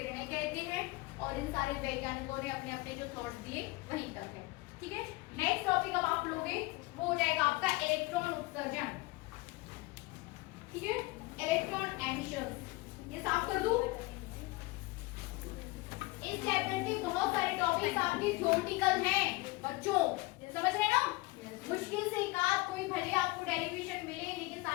कहते हैं। और इन सारे वैज्ञानिकों ने अपने अपने जो थॉट्स दिए वहीं तक है। ठीक है, नेक्स्ट टॉपिक अब आप लोगे वो हो जाएगा आपका इलेक्ट्रॉन उत्सर्जन। ठीक है, इलेक्ट्रॉन एमिशन। ये साफ कर दूं। इस चैप्टर के बहुत सारे टॉपिक्स आपके थ्योरेटिकल हैं बच्चों, समझ रहे हैं ना? मुश्किल से एक आध कोई भले आपको डेरिवेशन मिले, लेकिन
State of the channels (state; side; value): quieter; right; 22.0 dB